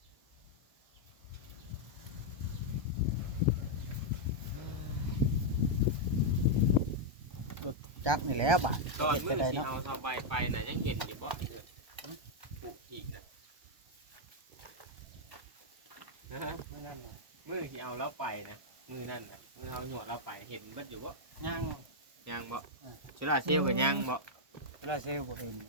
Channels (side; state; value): left; late; 1.2 ms